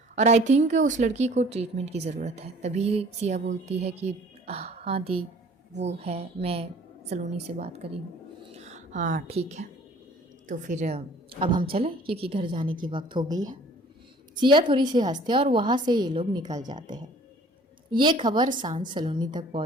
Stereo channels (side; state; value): both; normal; correlation 0.52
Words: और आई थिंक उस लड़की को ट्रीटमेंट की ज़रूरत है। तभी सिया बोलती है कि हाँ दी, वो है, मैं सलोनी से बात करी हूँ। हाँ ठीक है, तो फिर अब हम चलें क्योंकि घर जाने की वक्त हो गई है। सिया थोड़ी सी हंसते और वहाँ से ये लोग निकल जाते हैं। ये खबर सांझ सलोनी तक